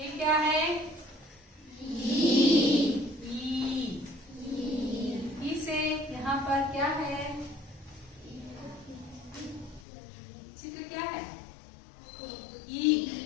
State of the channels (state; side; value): drops out; right; at 9.9 s